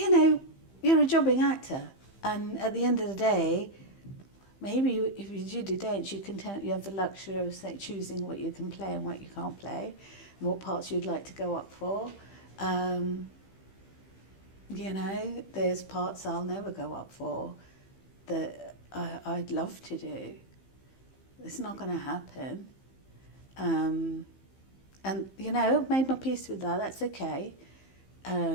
know, you're a jobbing actor, and at the end of the day, maybe if you do the dance, you have the luxury of choosing what you can play and what you can't play, and what parts you'd like to go up for. You know, there's parts I'll never go up for that I'd love to do. It's not going to happen. And, you know, I've made my peace with that. That's okay,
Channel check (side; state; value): right; late; 15 ms